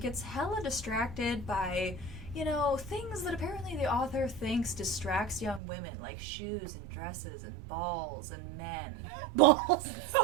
hella distracted by, you know, things that apparently the author thinks distracts young women, like shoes and dresses and balls and men. Balls.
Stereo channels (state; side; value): drops out; left; at 5.6 s